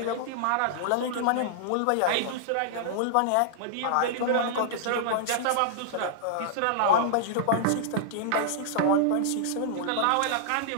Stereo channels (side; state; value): both; different; correlation -0.01